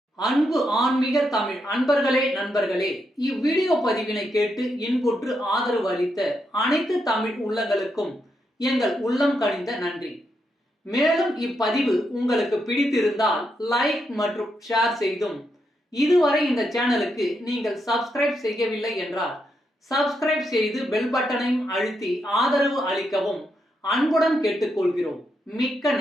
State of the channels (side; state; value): both; normal; correlation 0.81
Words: அன்பு ஆன்மீக தமிழ் அன்பர்களே, நண்பர்களே, இவ்வீடியோ பதிவினை கேட்டு இன்புற்று ஆதரவு அளித்த அனைத்து தமிழ் உள்ளங்களுக்கும் எங்கள் உள்ளம் கனிந்த நன்றி. மேலும் இப்பதிவு உங்களுக்கு பிடித்திருந்தால் லைக் மற்றும் ஷேர் செய்தும், இதுவரை இந்த சேனலுக்கு நீங்கள் சப்ஸ்கிரைப் செய்யவில்லை என்றால் சப்ஸ்கிரைப் செய்து பெல் பட்டனையும் அழுத்தி ஆதரவு அளிக்கவும் அன்புடன் கேட்டுக்கொள்கிறோம். மிக்க